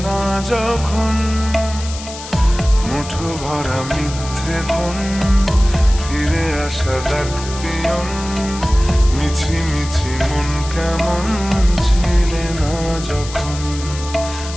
না যখন। মুঠো ভরা মিথ্যে ফোন, ফিরে আসা ডাক পিয়ন, মিছি মিছি মন কেমন ছিলে না যখন।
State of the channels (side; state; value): left; noise; hiss, 12 dB below the sound